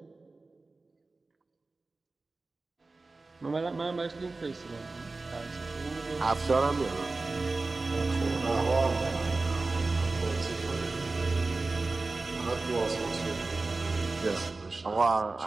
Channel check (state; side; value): quieter; left; 3.5 dB